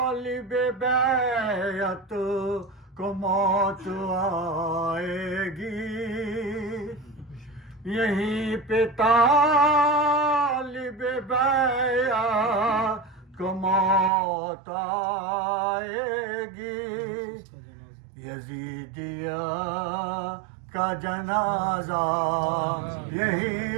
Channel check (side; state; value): left; drops out; at 14.1 s